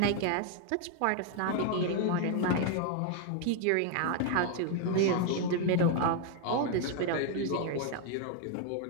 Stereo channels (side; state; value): both; different; correlation 0.01